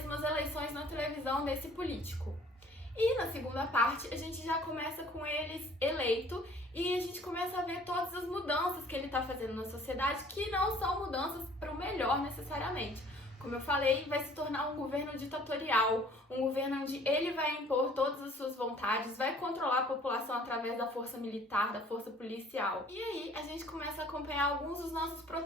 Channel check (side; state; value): both; normal; correlation 0.54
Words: as eleições na televisão desse político. E na segunda parte a gente já começa com ele eleito e a gente começa a ver todas as mudanças que ele está fazendo na sociedade, que não são mudanças para o melhor necessariamente. Como eu falei, vai se tornar um governo ditatorial, um governo onde ele vai impor todas as suas vontades, vai controlar a população através da força militar, da força policial. E aí a gente começa a acompanhar alguns dos nossos